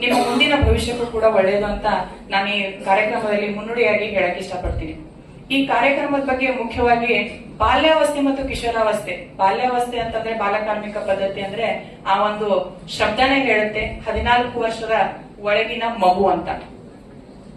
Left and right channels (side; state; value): both; identical; correlation 1.00